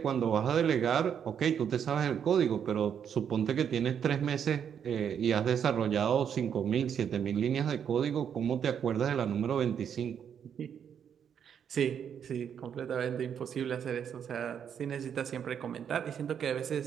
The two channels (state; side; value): quieter; left; 8.2 dB